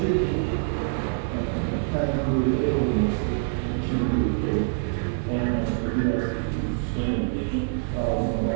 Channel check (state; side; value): silent; left; 61 dB below the other